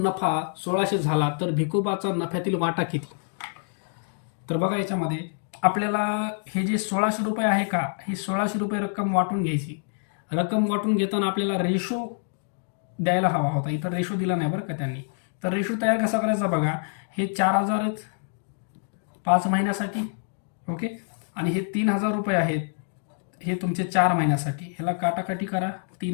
नफा 1600 झाला, तर भिकोबाचा नफ्यातील वाटा किती? तर बघा याच्यामध्ये आपल्याला हे जे 1600 रुपये आहे का, हे 1600 रुपये रक्कम वाटून घ्यायची. रक्कम वाटून घेताना आपल्याला रेशो द्यायला हवा होता, इथं रेशो दिला नाही बरं का त्यांनी. तर रेशो तयार कसा करायचा बघा, हे 4000 आहेत 5 महिन्यासाठी. ओके, आणि हे 3000 रुपये आहेत, हे तुमचे 4 महिन्यासाठी. ह्याला काटाकाटी करा,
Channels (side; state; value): right; silent; digital silence